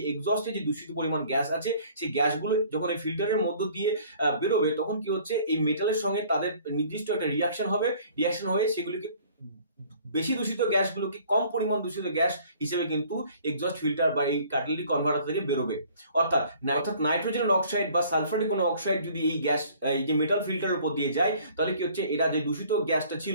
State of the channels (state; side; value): inverted; both; correlation -0.54